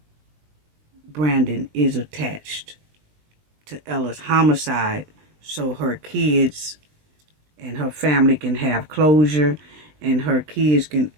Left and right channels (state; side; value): late; left; 20 ms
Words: Brandon is attached to Ella's homicide, so her kids and her family can have closure, and her kids can